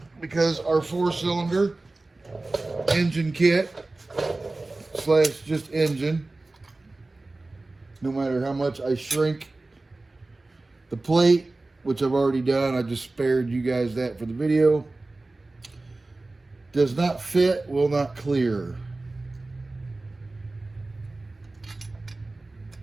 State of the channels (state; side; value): quieter; left; 3.1 dB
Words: because our 4-cylinder engine kit slash just engine, no matter how much I shrink the plate, which I've already done, I just spared you guys that for the video, does not fit, will not clear.